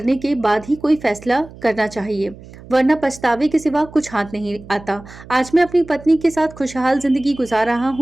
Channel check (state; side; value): noise; right; hum, 19 dB below the sound